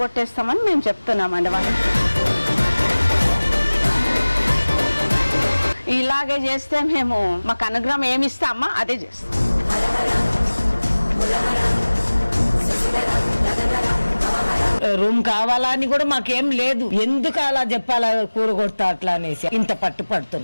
మేము చెప్తున్నామండి వాళ్ళకి. ఇలాగే చేస్తే మేము మాకు అనుగ్రహం ఏమి ఇస్తామా అదే చేస్తాం. రూమ్ కావాలా అని కూడా మాకేం లేదు, ఎందుకు అలా చెప్పాలా కూరగొడతా అట్లా అనేసి ఇంత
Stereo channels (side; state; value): both; inverted; correlation -1.00